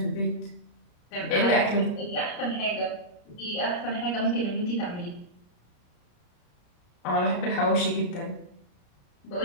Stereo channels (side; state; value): right; late; 34 ms